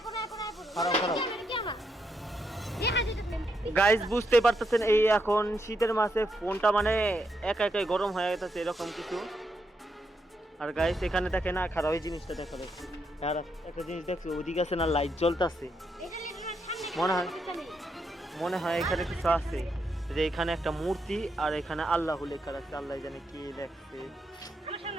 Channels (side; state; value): both; normal; correlation 0.80